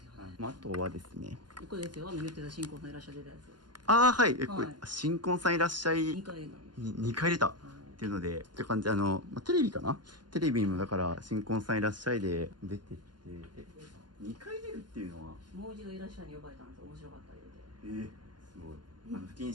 よね。あとはですね、これですよ、言ってた新婚さんいらっしゃってたやつ。はい、これはい新婚さんいらっしゃい2回なんです。 2回出たっていうのでって感じでテレビかな、テレビにもだから新婚さんいらっしゃいで出てって2回出るっていうのはもう一度いらっしゃいに呼ばれたんですよ、面白かった言うて。すごい不謹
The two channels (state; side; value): late; left; 0.71 ms